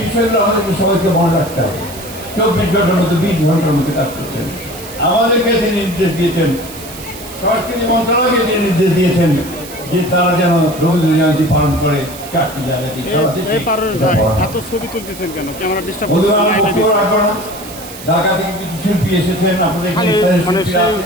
বিষয়গুলো আমাদেরকে সবাইকে মনে রাখতে হবে। 24 ঘন্টার মধ্যে 20 ঘন্টার মধ্যে কাজ করছেন। আমাদেরকে তিনি নির্দেশ দিয়েছেন, সংস্কৃতি মন্ত্রণালয়কে তিনি নির্দেশ দিয়েছেন যে তারা যেন রবীন্দ্র জয়ন্তী পালন করে 4টি জায়গায় ঢাকা থেকে কিছু শিল্পী এসেছেন, আপনাদের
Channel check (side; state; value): right; noise; hiss, 15 dB below the sound